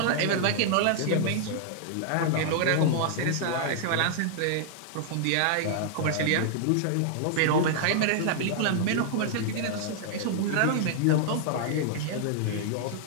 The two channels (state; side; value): different; both; correlation -0.01